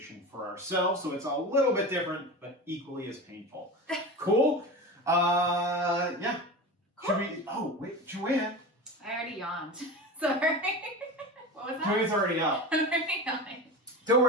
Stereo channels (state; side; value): normal; both; correlation 0.28